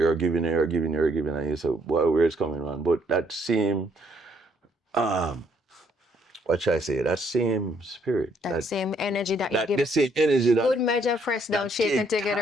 giving, and you say, well, where it's coming from. But that same um what should I say? That same spirit, That that same energy that you the give. same energy Good measure, press down, that shaken take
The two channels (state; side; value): normal; both; correlation 0.69